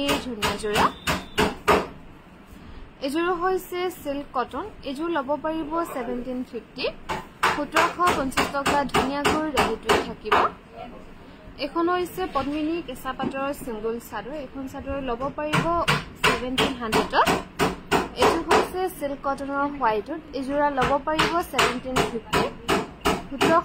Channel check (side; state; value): both; identical; correlation 1.00